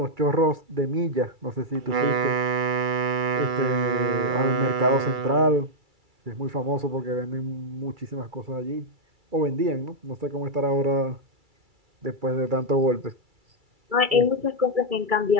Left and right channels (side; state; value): left; late; 2.3 ms